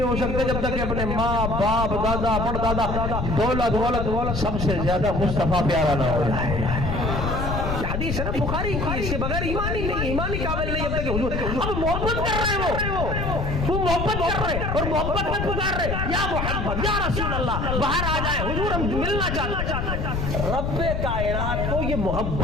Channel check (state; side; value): noise; left; rumble, 2 dB below the sound